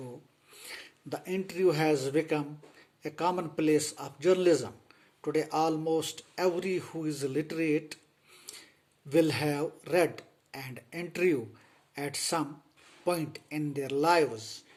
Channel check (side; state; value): both; identical; correlation 1.00